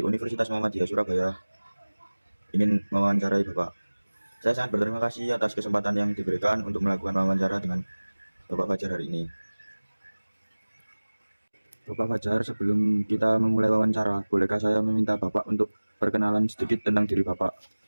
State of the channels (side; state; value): both; inverted; correlation -1.00